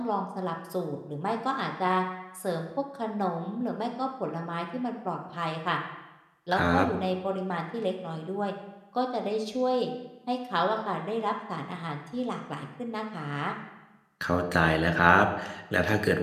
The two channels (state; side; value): identical; both; correlation 1.00